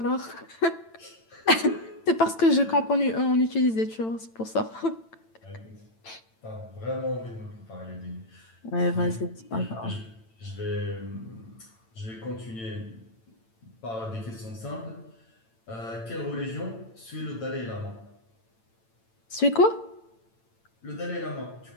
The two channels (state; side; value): late; right; 8.9 ms